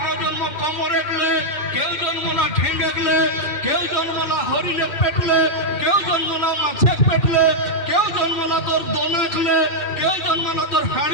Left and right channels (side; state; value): right; late; 3.0 ms